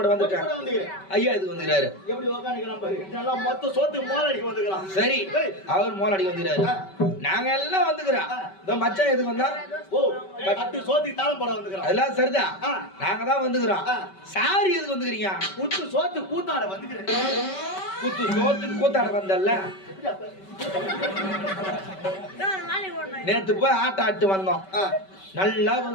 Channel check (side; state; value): right; late; 5.2 ms